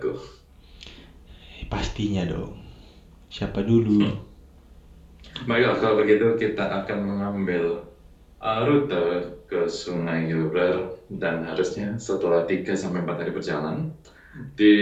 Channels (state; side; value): identical; both; correlation 1.00